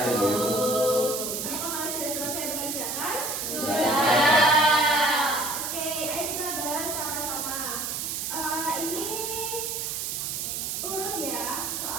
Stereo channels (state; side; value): noise; right; hiss, 3 dB below the sound